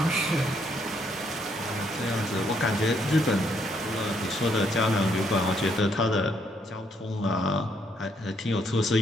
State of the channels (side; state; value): both; normal; correlation 0.72